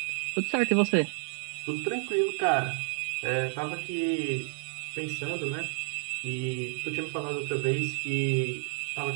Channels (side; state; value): left; silent; 58 dB below the other